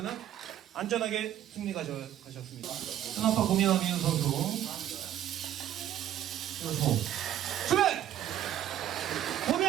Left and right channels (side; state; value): left; quieter; 11.5 dB